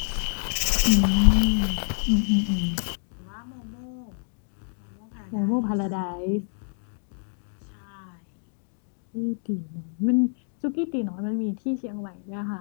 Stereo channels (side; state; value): right; silent; digital silence